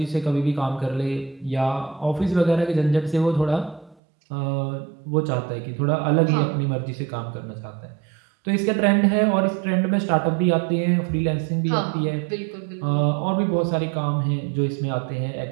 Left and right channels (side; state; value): left; drops out; at 4.0 s